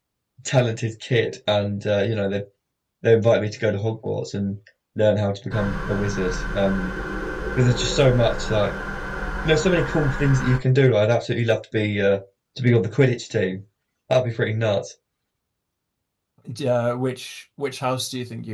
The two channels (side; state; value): both; identical; correlation 1.00